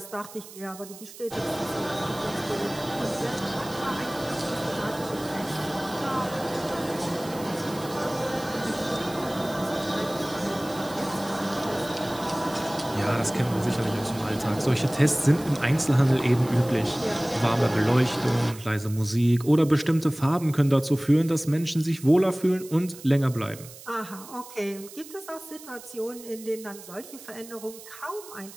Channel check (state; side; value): noise; right; hiss, 17 dB below the sound